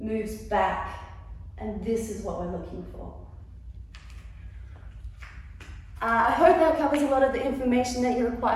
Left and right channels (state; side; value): identical; both; correlation 1.00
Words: moves back, and this is what we're looking for. I hope that covers a lot of the information that you